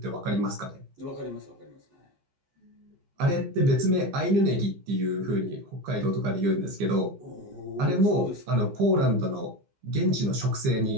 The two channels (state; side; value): late; left; 15 ms